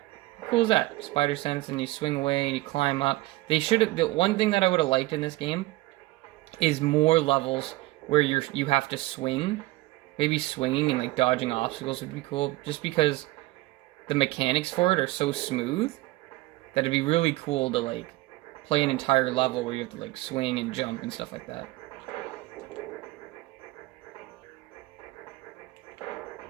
How cool is that? Spider sense, and you swing away and you climb up. They should have. The one thing that I would have liked in this game is more levels where you have to swing. Maybe swinging and like dodging obstacles would be cool. Just because the mechanics for it are so smooth. That it'd be really cool to like play an entire level where you have to like swing and jump and stuff like that.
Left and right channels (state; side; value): quieter; left; 19.4 dB